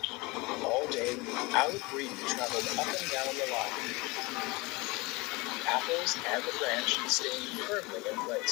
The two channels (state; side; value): quieter; right; 24.6 dB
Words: All day, Aled Greedy traveled up and down the line. apples and the branch staying firmly in